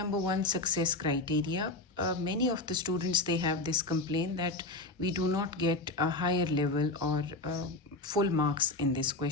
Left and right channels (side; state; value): right; quieter; 3.0 dB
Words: 1, success criteria. Many of the students, they have this complaint that we do not get a higher level or full marks in this